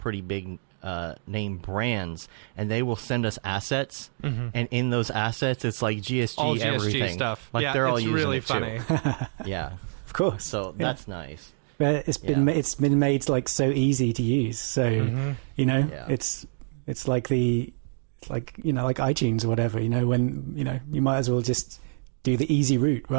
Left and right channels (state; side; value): silent; left; digital silence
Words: big name brands, and they will send us assets, and in those assets it's like GSG, All GSG everything stuff. like Yeah, they're all it's using really it funny. too. Yeah, Of course. so that's nice. But it's been made like so easy to use. So it's like like iTunes or whatever. When you might as well just do the easy route,